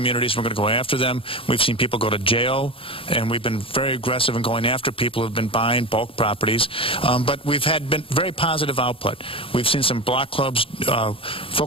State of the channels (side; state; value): right; late; 0.26 ms